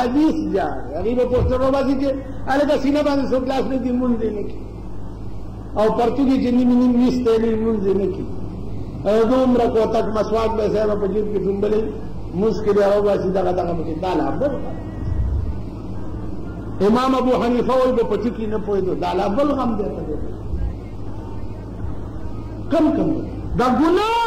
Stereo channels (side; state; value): both; identical; correlation 1.00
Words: جاړي هغوی به پوسټر روباسي چې هلکه سینه باندې څوک لاس نه دي مونځ یې نه کړي او پرتوګې چې نیم نیم ویستی نه مونځ یې نه کړي او دومره کوتک مسواک به صاحبه په جیب کې ډومبلی مونځ کې بیا روباسي دغه پکې دا لا بل امام ابو حنیفه وایي به په ټکي نه پوهېدو دا لا بل غم دی ته کم کم دا ګناه